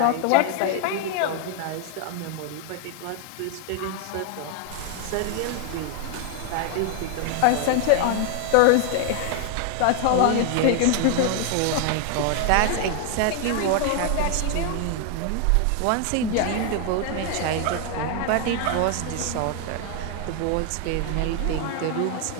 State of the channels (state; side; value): different; both; correlation 0.00